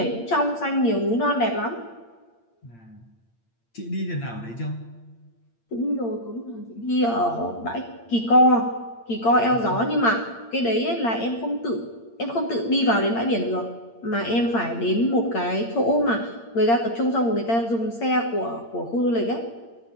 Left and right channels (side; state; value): right; late; 8.7 ms